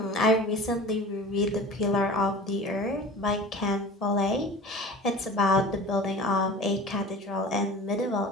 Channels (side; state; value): both; normal; correlation 0.39